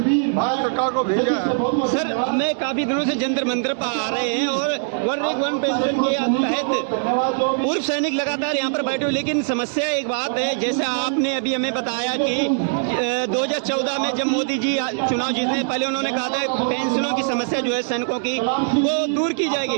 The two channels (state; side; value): silent; left; digital silence